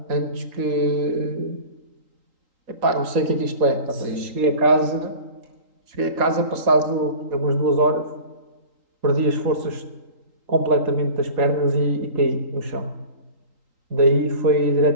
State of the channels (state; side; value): late; left; 3.8 ms